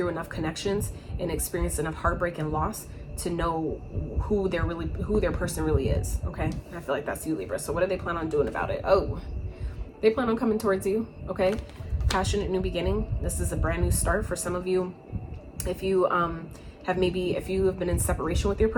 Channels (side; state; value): both; identical; correlation 1.00